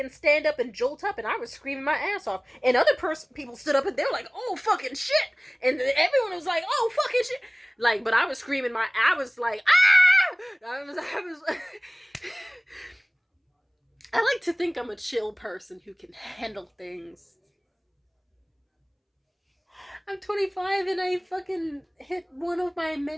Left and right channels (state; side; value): identical; both; correlation 1.00